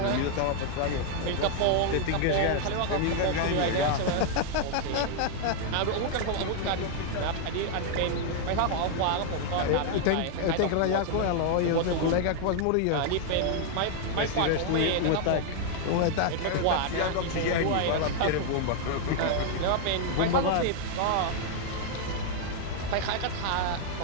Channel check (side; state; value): both; different; correlation 0.00